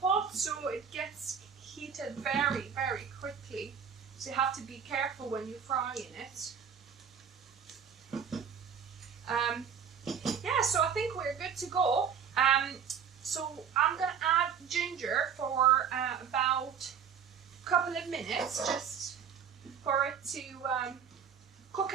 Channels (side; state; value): left; quieter; 7.4 dB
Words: pot, so it gets heated very, very quickly. So you have to be careful when you're frying it. Yeah, so I think we're good to go. So I'm going to add ginger for about a couple of minutes, just for it to cook